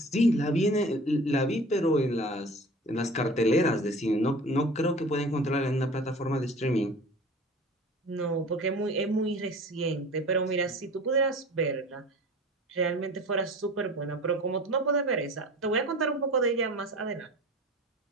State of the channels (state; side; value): normal; both; correlation 0.40